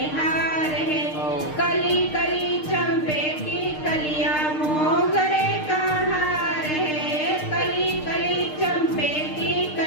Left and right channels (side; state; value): right; late; 6.6 ms